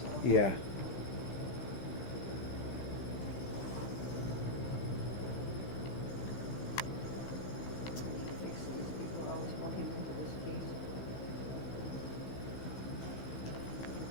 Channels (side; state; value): right; late; 15 ms